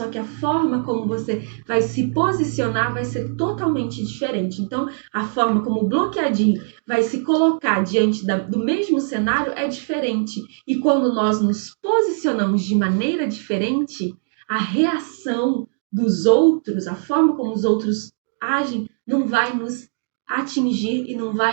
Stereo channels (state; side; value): silent; left; digital silence